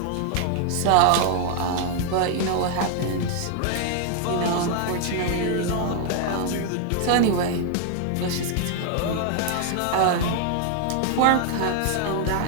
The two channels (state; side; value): different; both; correlation 0.00